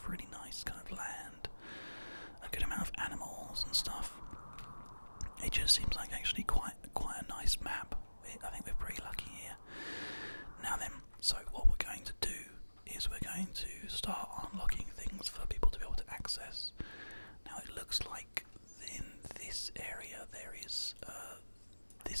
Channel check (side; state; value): both; inverted; correlation -1.00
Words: really nice kind of land, a good amount of animals and stuff. It just seems like actually quite a nice map. I think we're pretty lucky here. Now then, so what we're going to do is we're going to start unlocking things for people to be able to access. Now it looks like in this area there is